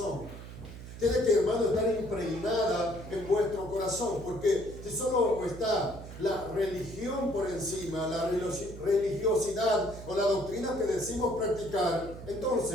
Tiene que, hermano, estar impregnada en vuestro corazón, porque si solo está la religión por encima, la religiosidad o la doctrina que decimos practicar,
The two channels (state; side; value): noise; right; hum, 13 dB below the sound